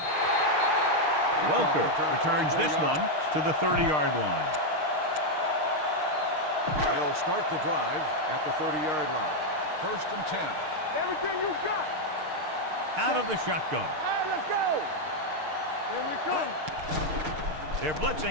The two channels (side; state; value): left; late; 6.5 ms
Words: Welker returns this one to the 30-yard line. They'll start the drive at the 30-yard line. First and 10. Everything you got. Out of the shotgun. All right, let's go. Here we come. They're blitzing.